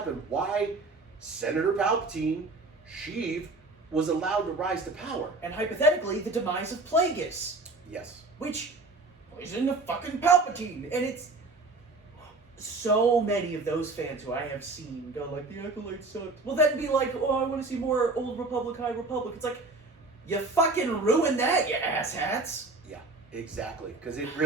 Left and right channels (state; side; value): quieter; left; 3.4 dB